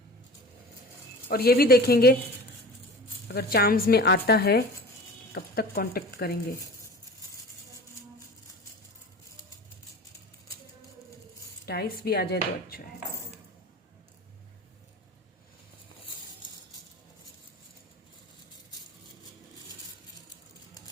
और ये भी देखेंगे अगर चार्म्स में आता है कब तक कांटेक्ट करेंगे। डाइस भी आ जाए तो अच्छा है।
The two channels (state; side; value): normal; both; correlation 0.38